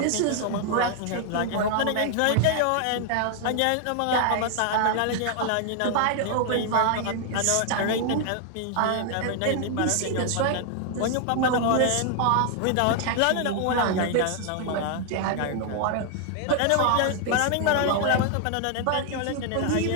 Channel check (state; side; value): different; both; correlation 0.00